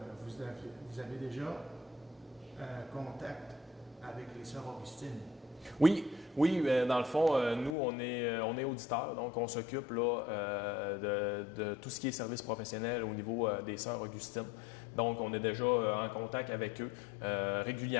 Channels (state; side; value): drops out; right; at 7.8 s